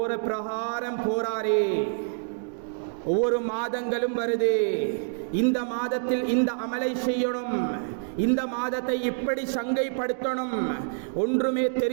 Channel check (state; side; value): silent; left; digital silence